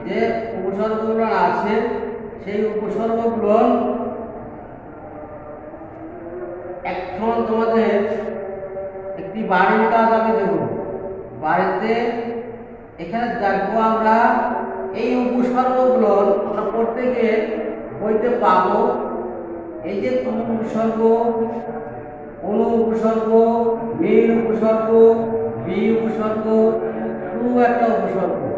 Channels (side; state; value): both; identical; correlation 1.00